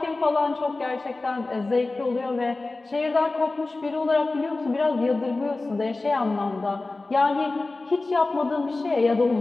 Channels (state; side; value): quieter; right; 3.3 dB